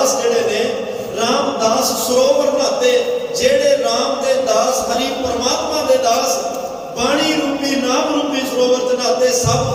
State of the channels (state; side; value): identical; both; correlation 1.00